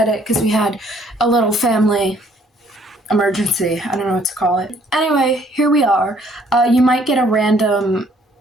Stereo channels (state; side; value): normal; both; correlation 0.63